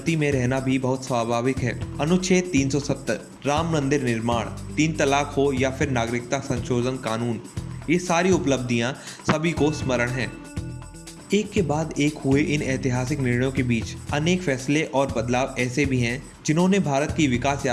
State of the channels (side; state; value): both; identical; correlation 1.00